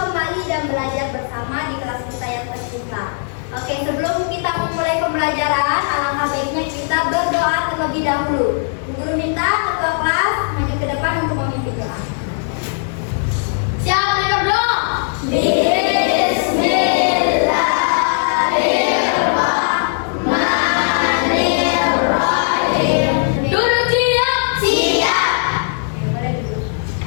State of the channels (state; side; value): silent; right; 57 dB below the other